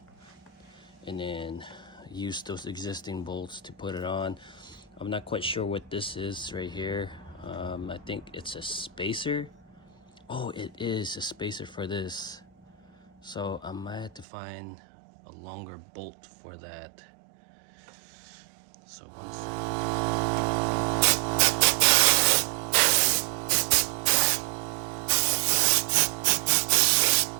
and then use those existing bolts to put it on. I'm not quite sure what this is right here. I think it's a spacer. Oh, it is a spacer for this, so I might have to find a longer bolt for that. So one second.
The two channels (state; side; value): drops out; left; at 14.2 s